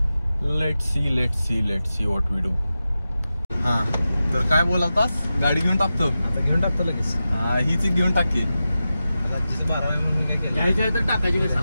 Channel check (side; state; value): both; inverted; correlation -0.93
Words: Let see what we do. हा तर काय बोलालतास? गाडी घेऊन टाकतो आता, घेऊन टाकतो लगेच. हीच घेऊन टाकी. घ्यायची आहे तर टाकायची